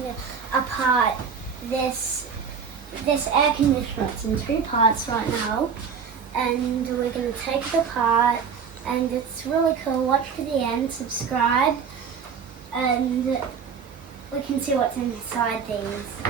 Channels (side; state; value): left; quieter; 6.4 dB